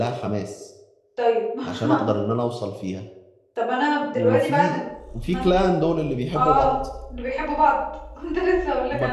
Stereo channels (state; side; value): identical; both; correlation 1.00